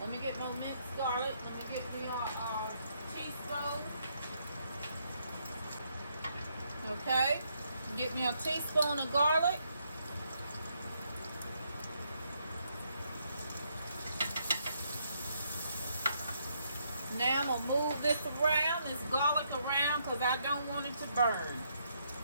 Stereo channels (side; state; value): both; inverted; correlation -0.74